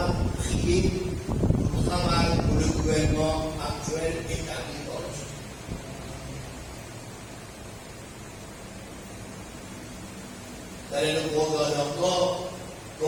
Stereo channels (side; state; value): both; identical; correlation 1.00